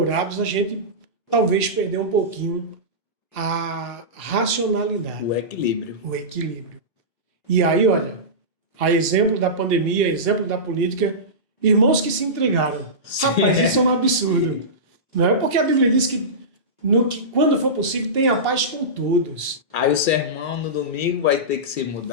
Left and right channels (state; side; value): normal; both; correlation -0.18